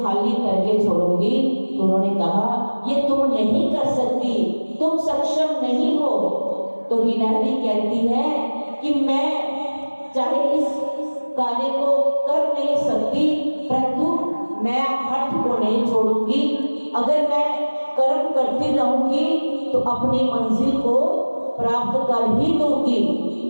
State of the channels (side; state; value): both; inverted; correlation -1.00